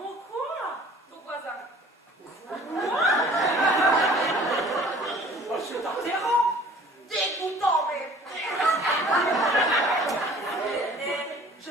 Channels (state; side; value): normal; both; correlation 0.50